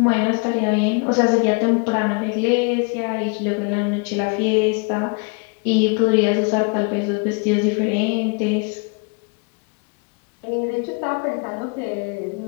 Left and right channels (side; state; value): right; quieter; 34.1 dB